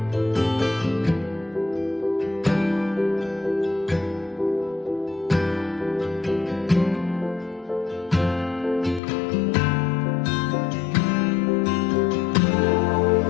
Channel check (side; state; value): right; drops out; at 9.0 s